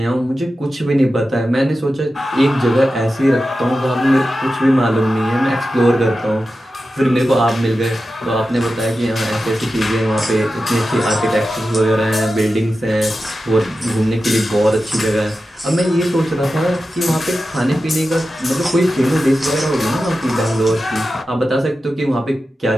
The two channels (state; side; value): normal; both; correlation 0.92